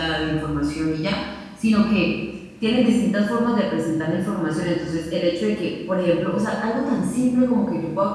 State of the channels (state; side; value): identical; both; correlation 1.00